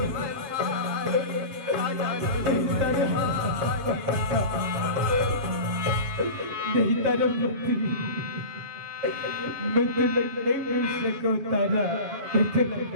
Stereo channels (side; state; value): left; late; 7.3 ms